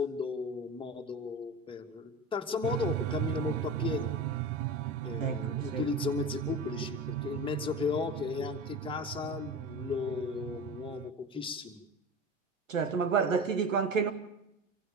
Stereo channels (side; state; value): both; normal; correlation 0.30